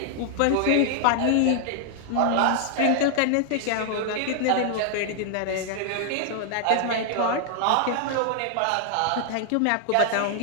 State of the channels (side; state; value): both; different; correlation 0.00